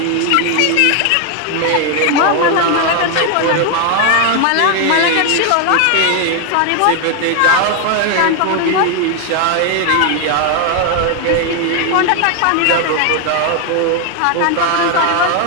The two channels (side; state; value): both; different; correlation 0.01